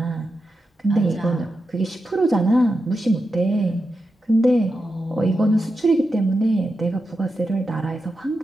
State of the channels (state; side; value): normal; both; correlation 0.89